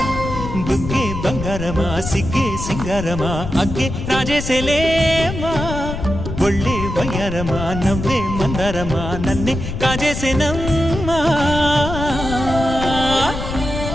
బుగ్గే బంగారమా సిగ్గే సింగారమా అగ్గే రాజేసేలేమా ఒళ్ళే వయ్యారమా నవ్వే మందారమా నన్నే కాజేసేనమ్మా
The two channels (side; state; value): left; noise; rumble, 6 dB below the sound